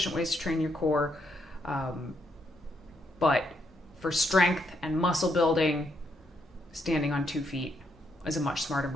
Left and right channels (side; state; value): both; normal; correlation 0.76